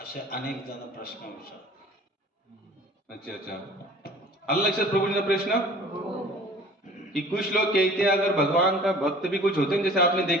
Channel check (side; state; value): both; normal; correlation 0.48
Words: असे अनेक जण प्रश्न विचारतात. अच्छा अच्छा, आला लक्षात प्रभु जी का प्रश्न कि कुछ लोग कहते हैं अगर भगवान का भक्त भी कुछ होते हैं, जैसे आपने